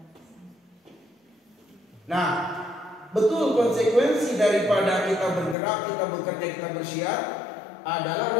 Nah, betul konsekuensi daripada kita bergerak, kita bekerja, kita bersyiar adalah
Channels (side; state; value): right; drops out; at 5.6 s